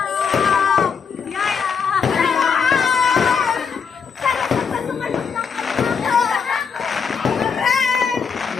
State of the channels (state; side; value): quieter; right; 6.2 dB